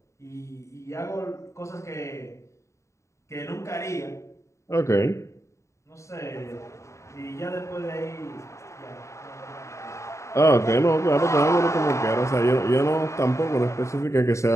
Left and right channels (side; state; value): right; late; 0.14 ms